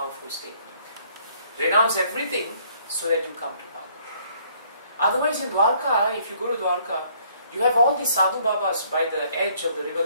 statement. Renounce everything so that you come to Bhagavatam. Otherwise in Dwarka, if you go to Dwarka, you have all these sadhu babas by the edge of the river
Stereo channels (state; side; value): inverted; both; correlation -0.63